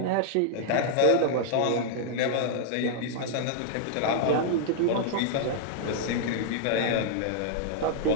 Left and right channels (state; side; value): different; both; correlation -0.01